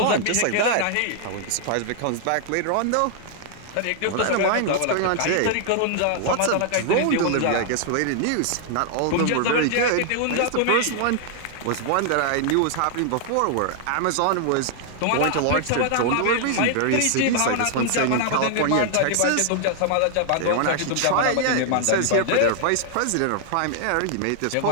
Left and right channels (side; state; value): both; different; correlation 0.00